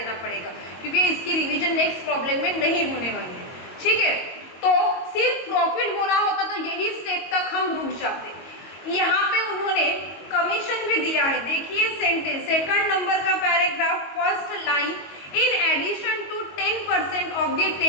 पड़ेगा, क्योंकि इसकी रिवीजन नेक्स्ट प्रॉब्लम में नहीं होने वाली है। ठीक है, तो सिर्फ प्रॉफिट बोला होता तो यही स्टेप तक हम रुक जाते। यहाँ पे उन्होंने कमीशन भी दिया है। देखिए सेंटेंस, सेकंड नंबर का paragraph, first line, in addition to 10% of the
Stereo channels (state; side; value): late; right; 22 ms